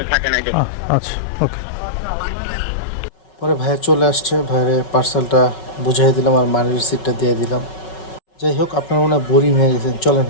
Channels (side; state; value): right; late; 5.4 ms